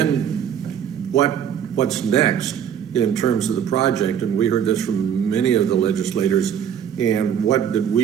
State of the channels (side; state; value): left; quieter; 8.8 dB